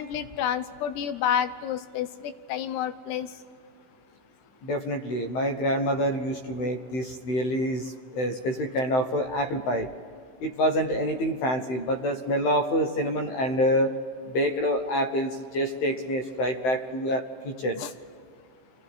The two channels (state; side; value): late; right; 16 ms